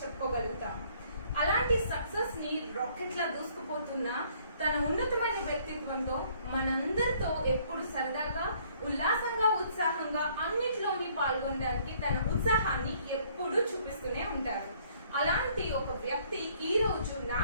చెప్పుకోగలుగుతాం. అలాంటి సక్సెస్ ని రాకెట్ లా దూసుకుపోతున్న తన ఉన్నతమైన వ్యక్తిత్వంతో మనందరితో ఎప్పుడు సరదాగా ఉల్లాసంగా ఉత్సాహంగా అన్నిటిలోని పాల్గొనడానికి తన ఉత్సాహాన్ని ఎప్పుడూ చూపిస్తూనే ఉంటారు. అలాంటి ఒక వ్యక్తి ఈ రోజు నా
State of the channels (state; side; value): inverted; both; correlation -0.62